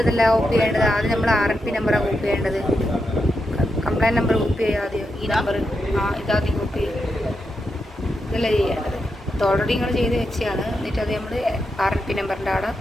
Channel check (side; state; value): both; normal; correlation 0.85